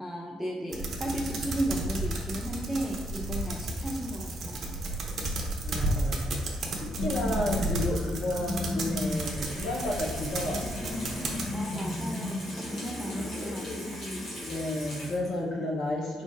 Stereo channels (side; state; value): both; normal; correlation 0.74